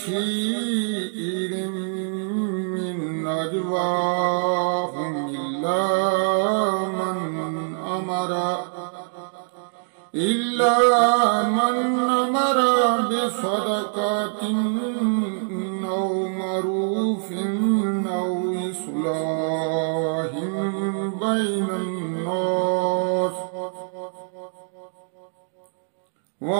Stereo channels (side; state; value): left; silent; digital silence